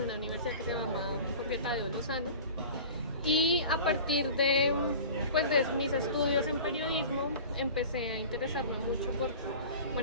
una universidad que se llama Jorge Tadeo Lozano, y a partir de mis estudios en periodismo empecé a interesarme mucho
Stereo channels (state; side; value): inverted; both; correlation -0.39